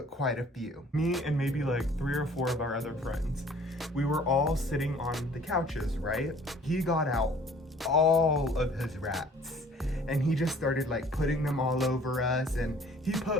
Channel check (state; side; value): normal; both; correlation 0.53